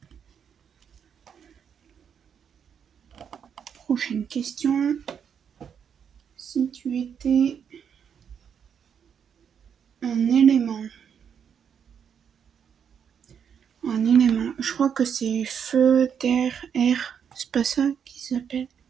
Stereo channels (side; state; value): left; quieter; 7.7 dB